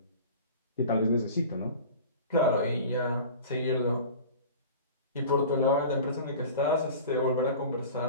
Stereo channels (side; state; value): both; inverted; correlation -0.38